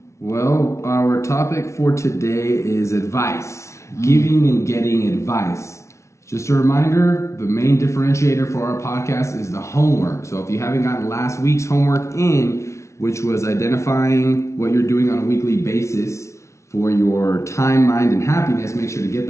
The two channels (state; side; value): late; right; 0.14 ms